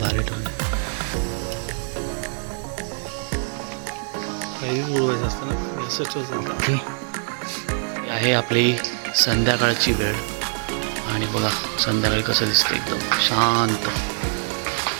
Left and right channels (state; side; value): silent; left; 60 dB below the other